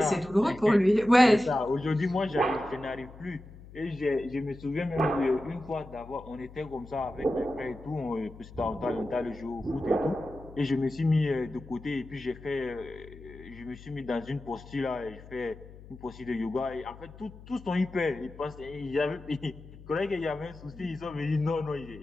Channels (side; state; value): left; noise; hum, 18 dB below the sound